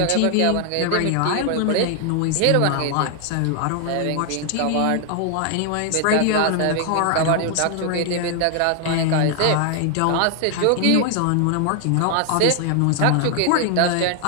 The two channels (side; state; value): both; different; correlation 0.00